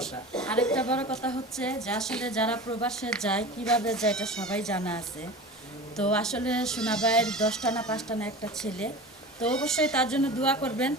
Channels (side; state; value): both; normal; correlation 0.33